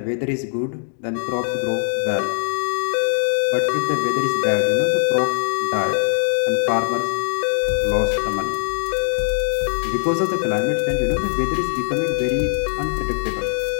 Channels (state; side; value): silent; right; 56 dB below the other